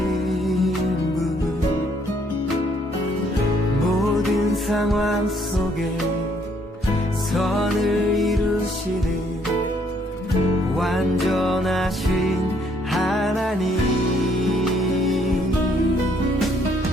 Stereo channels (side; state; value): both; normal; correlation 0.67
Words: 분 모든 상황 속에 선을 이루시는 완전하신 하나님